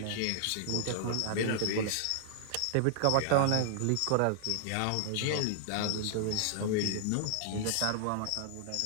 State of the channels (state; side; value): different; both; correlation -0.01